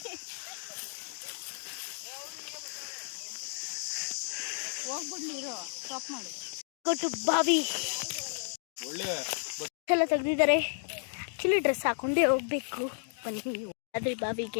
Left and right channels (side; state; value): right; silent; digital silence